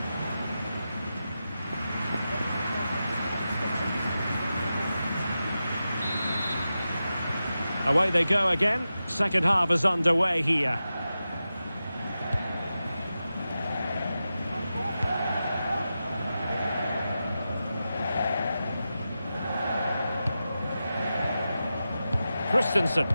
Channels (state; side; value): inverted; both; correlation -0.92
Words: Away they go again. Second half is underway here. Christensen.